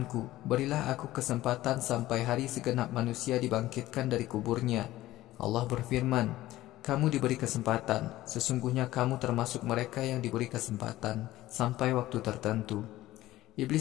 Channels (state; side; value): quieter; right; 16.0 dB